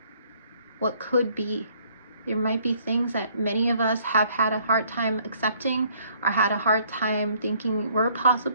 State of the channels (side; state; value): both; inverted; correlation -0.63